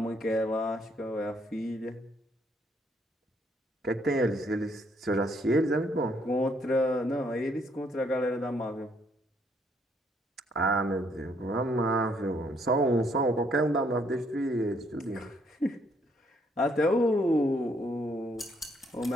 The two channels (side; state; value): both; normal; correlation 0.69